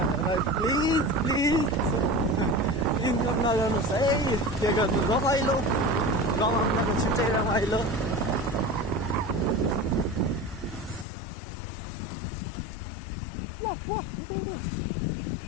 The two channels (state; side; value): drops out; right; at 11.1 s